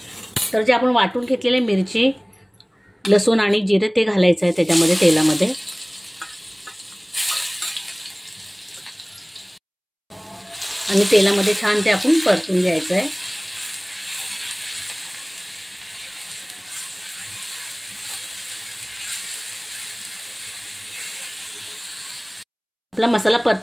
तर जे आपण वाटून घेतलेले मिरची, लसूण आणि जिरे ते घालायचं आहे त्याच्यामध्ये तेलामध्ये. आणि तेलामध्ये छान ते आपण परतून घ्यायचं आहे. आपला मसाला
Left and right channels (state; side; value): identical; both; correlation 1.00